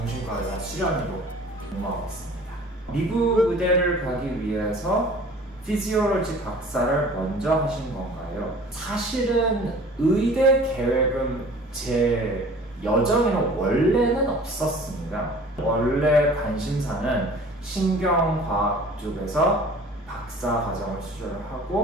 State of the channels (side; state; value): both; normal; correlation 0.46